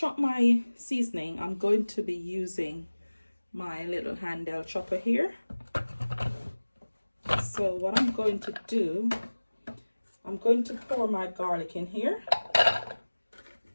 my seasoning, I'm going to be using my little handheld chopper here. So what I'm going to do, I'm going to pour my garlic in here.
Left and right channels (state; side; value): inverted; both; correlation -1.00